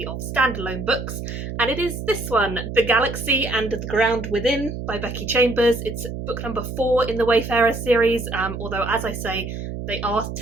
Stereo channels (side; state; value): right; noise; hum, 7 dB below the sound